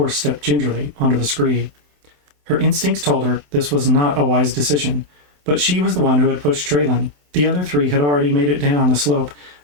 stepped gingerly onto the scree. Her instincts told her this was not a wise decision, but she was the one who had pushed Traylon. The other three had already made it down the slope,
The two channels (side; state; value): left; late; 27 ms